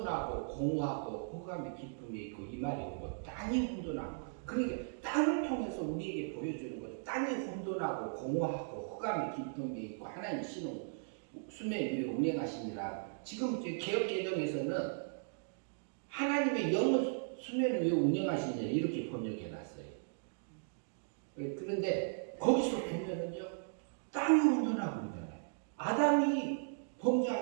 공허하고 흑암의 깊음이 있고 이 말이 오고 땅이 혼돈하고 그러니까 땅을 통해서 우리에게 보여주는 거죠. 땅이 혼돈하고 공허하고 흑암의 깊음이 있고 하나님 신은 수면 위에 운행하시니라. 지금 개혁개정에서는 하나님의 영을 수면 위에 운행하시니라 이렇게 번역해놨어요. 그런데 거기서 보면은요 땅이 혼돈하고 있잖아요. 아담이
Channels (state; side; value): silent; left; digital silence